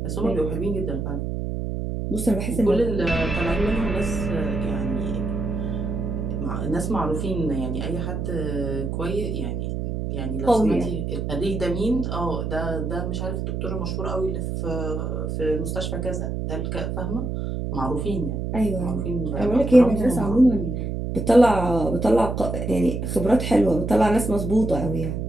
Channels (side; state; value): right; noise; hum, 3 dB below the sound